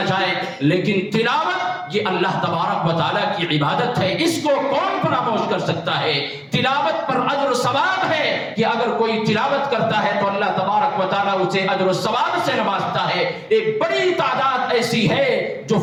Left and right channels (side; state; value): both; identical; correlation 1.00